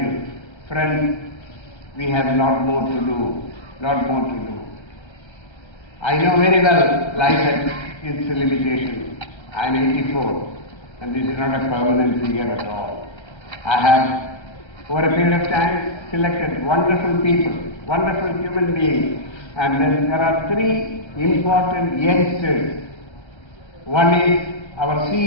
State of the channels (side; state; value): right; late; 1.3 ms